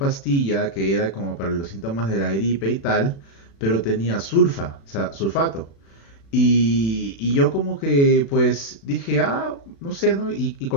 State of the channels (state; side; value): late; right; 36 ms